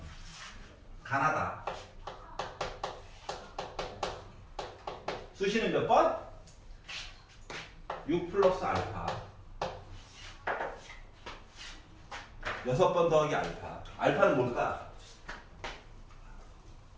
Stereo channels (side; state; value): both; identical; correlation 1.00